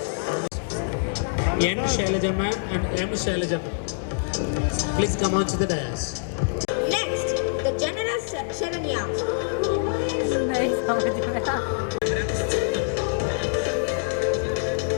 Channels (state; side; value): silent; right; digital silence